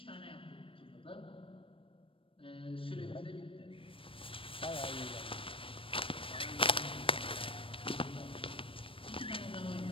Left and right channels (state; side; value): late; right; 0.26 ms